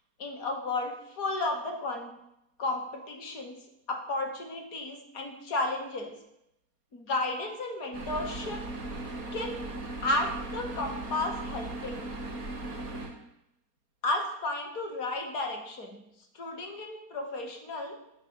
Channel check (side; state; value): right; late; 4.3 ms